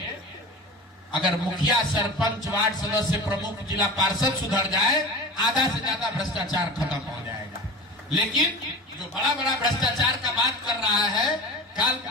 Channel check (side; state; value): both; normal; correlation 0.31